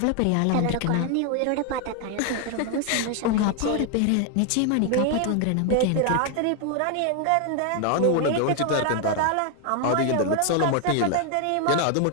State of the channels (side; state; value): both; different; correlation 0.01